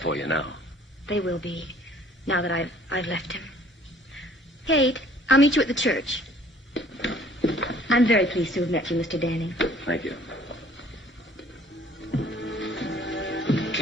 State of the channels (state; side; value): normal; both; correlation 0.56